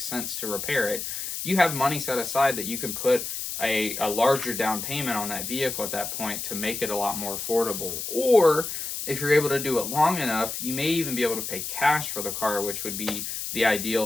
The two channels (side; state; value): left; noise; hiss, 5 dB below the sound